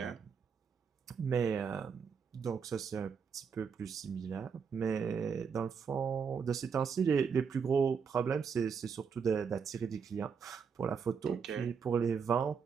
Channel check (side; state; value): left; quieter; 6.3 dB